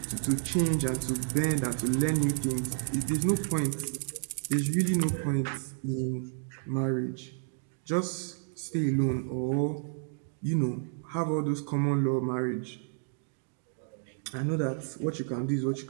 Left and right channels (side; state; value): left; silent; digital silence